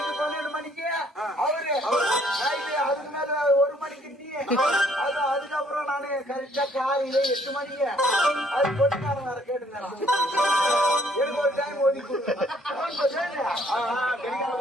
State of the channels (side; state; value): both; normal; correlation 0.63